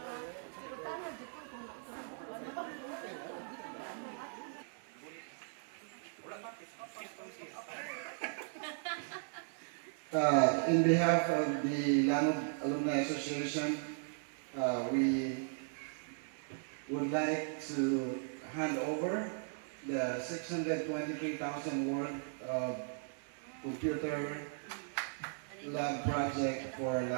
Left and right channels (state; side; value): silent; left; 53 dB below the other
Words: In behalf of the Langob Alumni Association, we would like to hand over the 623,000 worth of computer lab project for